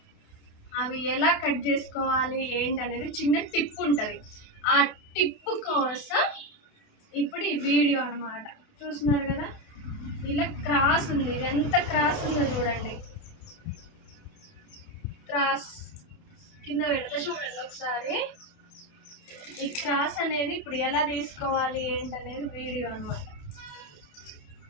అవి ఎలా కట్ చేసుకోవాలి ఏంటి అనేది చిన్న టిప్ ఉంటుంది. ఆ టిప్ కోసం ఇప్పుడు ఈ వీడియో అనమాట. చూస్తున్నారు కదా, ఇలా క్రాస్ ఉంది. ఇది ఎంత క్రాస్ ఉందో చూడండి. క్రాస్ కింద పెడతా చూడండి ఒకసారి. ఈ క్రాస్ అనేది ఇప్పుడు ఎలా తీసుకోవాలి ఏంటనేది వీడియో అనమాట.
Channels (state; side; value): late; right; 28 ms